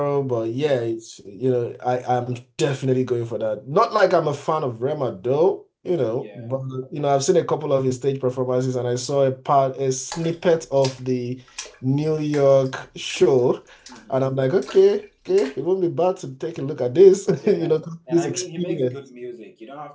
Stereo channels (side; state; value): both; identical; correlation 1.00